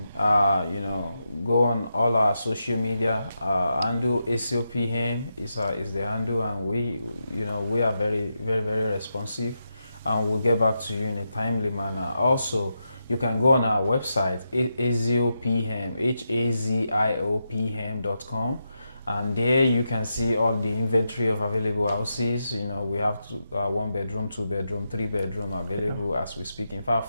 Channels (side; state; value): both; inverted; correlation -0.86